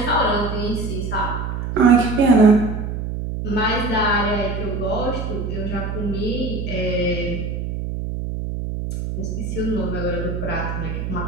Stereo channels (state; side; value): noise; right; hum, 4 dB below the sound